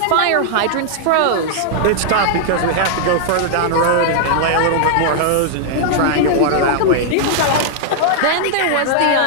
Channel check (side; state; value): both; different; correlation -0.01